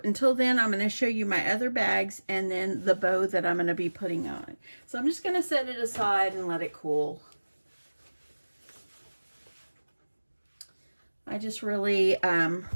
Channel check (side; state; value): both; inverted; correlation -1.00